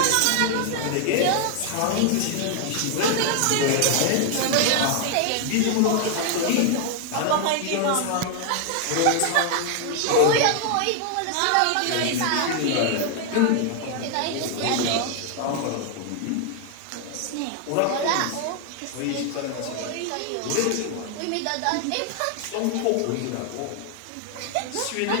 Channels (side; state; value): both; different; correlation 0.00